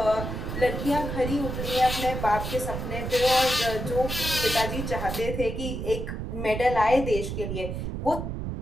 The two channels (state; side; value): noise; right; rumble, 4 dB below the sound